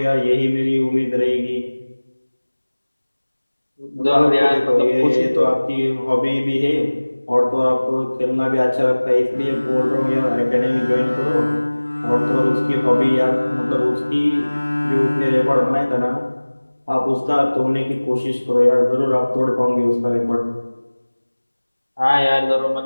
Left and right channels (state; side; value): inverted; both; correlation -1.00